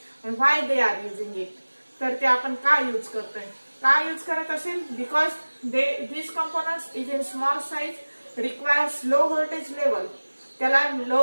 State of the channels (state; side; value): inverted; both; correlation -1.00